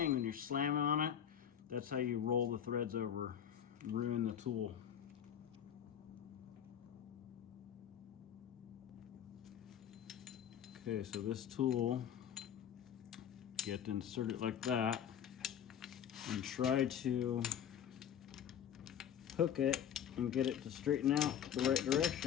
when you're slamming on it. That's how you roll the threads over and ruin the tool. Okay, so this tool, you have to insert it like that and try to hook it and get it to straighten out the right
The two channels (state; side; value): quieter; right; 9.2 dB